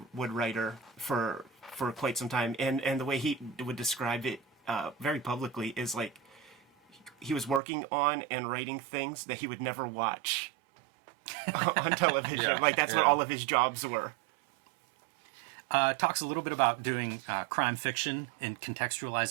writer for quite some time. And the way he would describe it very publicly is like he was working on and writing things that he would never watch on television. Like that's what all of his jobs were. Talks a little bit about doing crime fiction and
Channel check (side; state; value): left; drops out; at 7.6 s